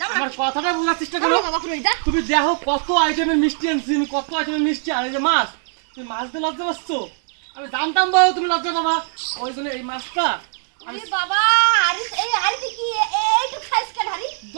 আমার কথাটা বোঝার চেষ্টা করো তুমি দেখো কত আইটেমের মিষ্টি আনছি আমি কত আইটেমের মিষ্টি আর এই যে মাছ তুমি মাছ দিয়ে লজ্জা পাচ্ছো আমি জানতাম বাবা তুমি লজ্জা পাবা ওই জন্য এই মাছটা আরে বাবা আরে এই আরে কি এইটু খাইছ কেন হারি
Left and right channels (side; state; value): left; silent; 60 dB below the other